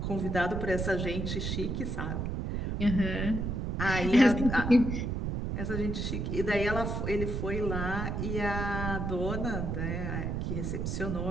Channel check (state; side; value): noise; right; rumble, 2 dB below the sound